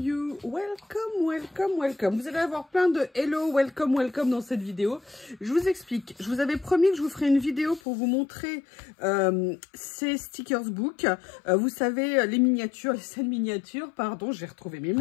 welcome, welcome, welcome. Vous allez avoir plein de hello, welcome, welcome dans cette vidéo. Je vous explique. Je vous avais promis que je vous ferai une vidéo pour vous montrer ces stickers book. Vous savez, les miniatures, les scènes miniatures, pardon, j'ai retrouvé mes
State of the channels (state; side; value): drops out; right; at 7.8 s